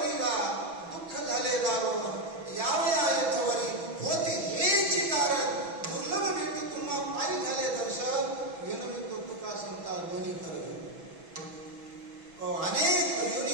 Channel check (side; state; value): left; late; 6.1 ms